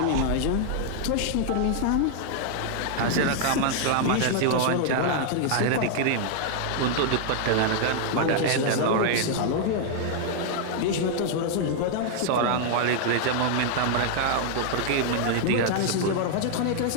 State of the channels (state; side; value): different; both; correlation 0.00